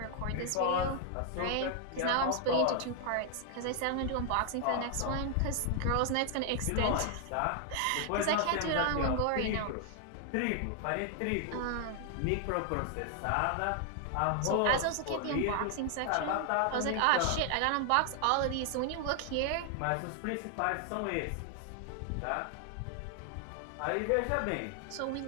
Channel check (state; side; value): different; both; correlation 0.00